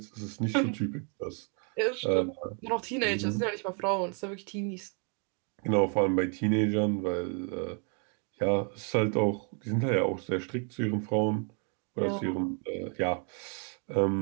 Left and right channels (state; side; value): quieter; left; 39.0 dB